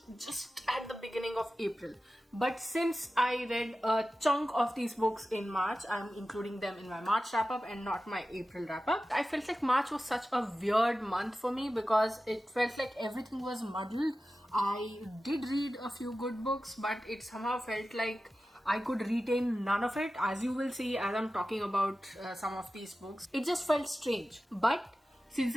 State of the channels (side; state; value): both; normal; correlation 0.94